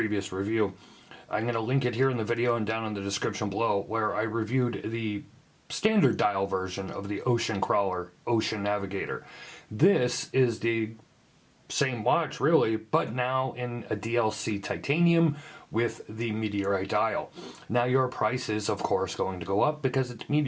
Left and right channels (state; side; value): identical; both; correlation 1.00